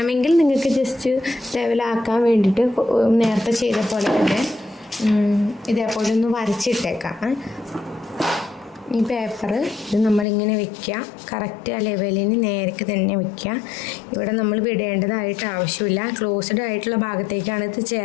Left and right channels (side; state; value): right; drops out; at 10.2 s